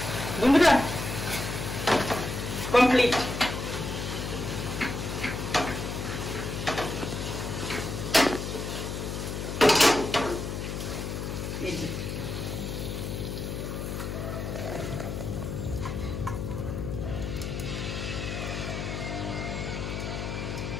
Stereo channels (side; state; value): left; noise; hum, 4 dB below the sound